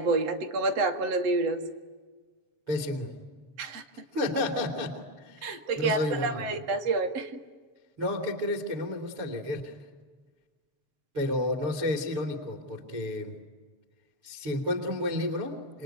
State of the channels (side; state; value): left; late; 6.8 ms